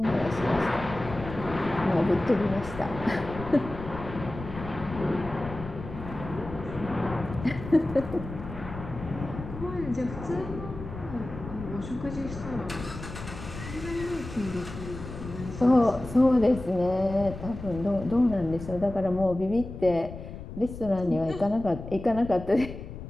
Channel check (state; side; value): noise; left; rumble, 11 dB below the sound